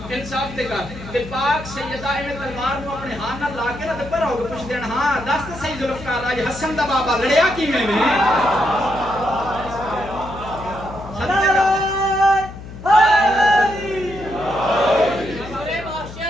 انصاف تے کر تے پاک سیدہ ایویں تلوار نو اپنے ہاتھ نال لا کے تے پر ہو کے پوچھ دین ہاں دس تے صحیح ذوالفقار اج حسن دا بابا لڑیا کیویں میں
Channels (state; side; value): noise; left; hum, 13 dB below the sound